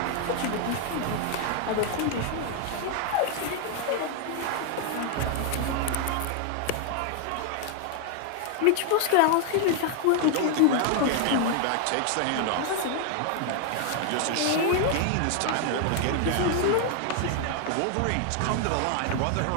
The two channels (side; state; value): both; different; correlation 0.00